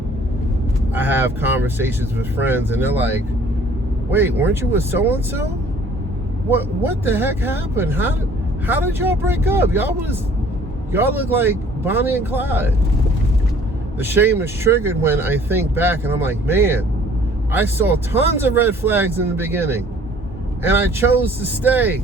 I have conversations with friends and they're like, wait, weren't you with so-and-so? What the heck happened? How did y'all break up? Y'all look like Bonnie and Clyde. The shame is triggered when I think back and I'm like, man, I saw tons of red flags in the beginning and I chose to stay.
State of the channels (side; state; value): both; normal; correlation 0.55